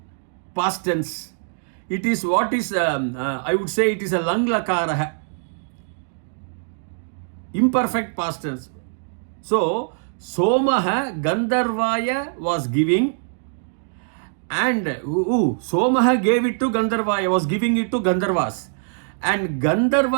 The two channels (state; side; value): silent; left; digital silence